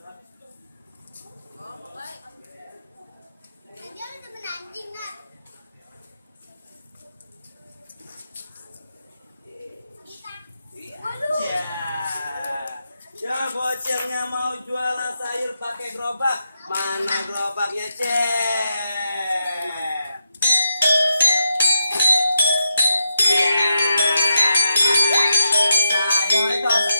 Oh, baik. Dia ada temen anjing nggak? Ya bocilnya mau jualan sayur pakai gerobak. Mana gerobaknya cek? Sayur itu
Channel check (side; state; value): both; inverted; correlation -0.85